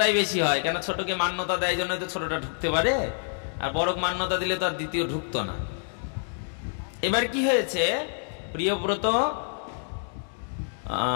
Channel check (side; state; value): right; silent; digital silence